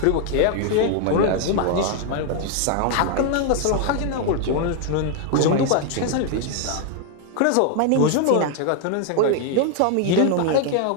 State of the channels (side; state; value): both; different; correlation 0.00